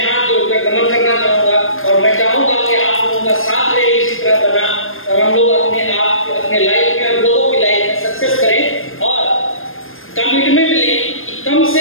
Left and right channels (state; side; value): late; right; 0.60 ms